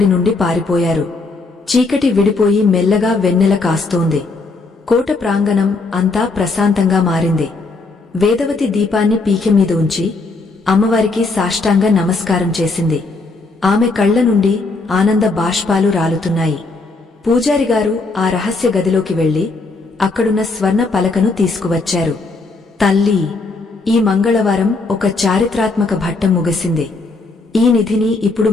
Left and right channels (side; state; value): right; quieter; 3.6 dB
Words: నుండి పారిపోయారు. చీకటి విడిపోయి మెల్లగా వెన్నెల కాస్తోంది. కోట ప్రాంగణం అంతా ప్రశాంతంగా మారింది. వేదవతి దీపాన్ని పీకె మీద ఉంచి అమ్మవారికి సాష్టాంగ నమస్కారం చేసింది. ఆమె కళ్ల నుండి ఆనంద బాష్పాలు రాలుతున్నాయి. పూజారిగారు ఆ రహస్య గదిలోకి వెళ్లి అక్కడున్న స్వర్ణ పలకను తీసుకువచ్చారు. తల్లి, ఈ మంగళవారం ఒక చారిత్రాత్మక ఘట్టం ముగిసింది. ఈ నిధిని ఇప్పుడు